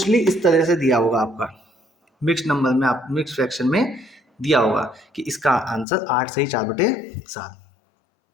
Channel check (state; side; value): drops out; right; at 5.9 s